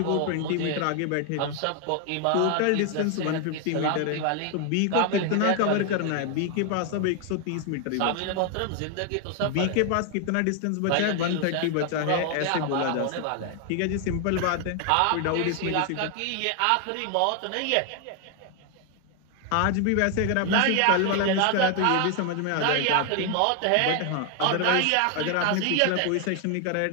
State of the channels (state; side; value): different; both; correlation 0.00